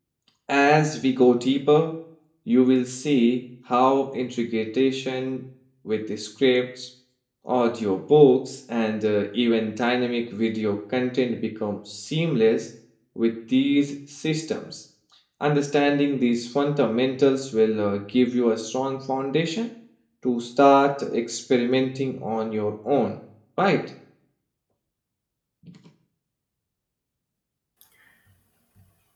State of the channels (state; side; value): identical; both; correlation 1.00